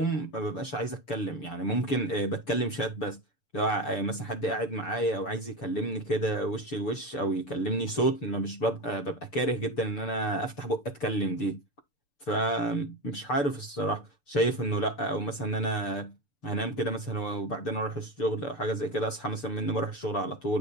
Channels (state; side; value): late; right; 6.9 ms